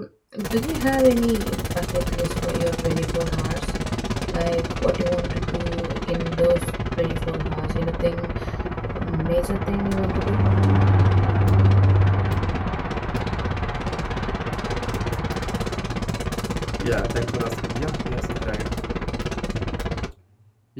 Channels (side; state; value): both; identical; correlation 1.00